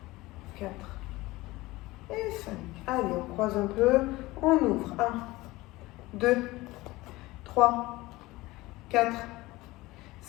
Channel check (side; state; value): right; quieter; 19.8 dB